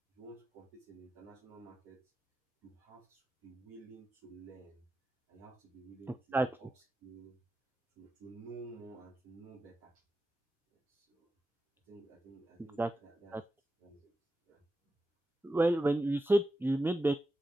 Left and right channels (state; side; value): normal; both; correlation 0.91